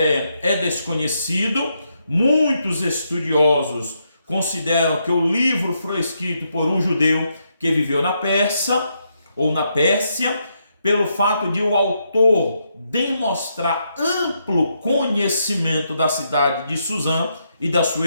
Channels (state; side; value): inverted; both; correlation -0.79